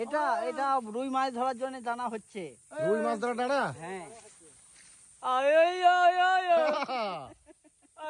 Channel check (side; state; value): both; identical; correlation 1.00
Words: এটা এটা রুই মাছ ধরার জন্য টানা হচ্ছে। রুই মাছ ধরা ডালা? হ্যাঁ।